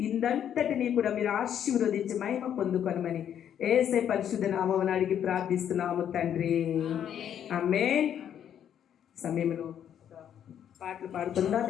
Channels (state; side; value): quieter; right; 9.5 dB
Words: ఇందంతటిని కూడా మీరు ఆశీర్వదించి మహిమ పొందుకొనమని యేసే పరిశుద్ధ నామమున అడిగి ప్రార్థిస్తున్నాము తండ్రి, ఆమేన్. సమయంలో పాటలు పాడుతుందా?